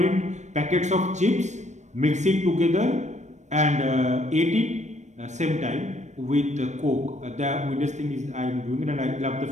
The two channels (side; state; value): left; late; 0.34 ms